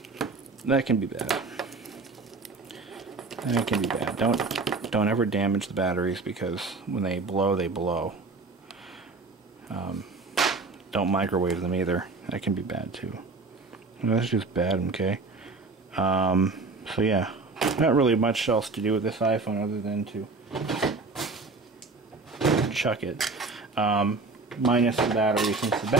can be bad. That can be bad. Don't ever damage the batteries because when they blow, they blow. Don't microwave them either. That can be bad too. That's just bad, okay? So yeah, not really much else to do with this iPhone other than to chuck it. Minus the battery. Since the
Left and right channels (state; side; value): quieter; left; 3.8 dB